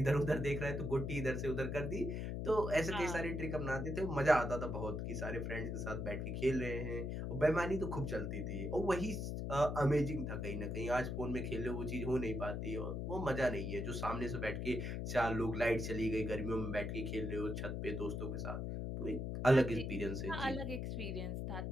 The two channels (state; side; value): noise; left; hum, 3 dB below the sound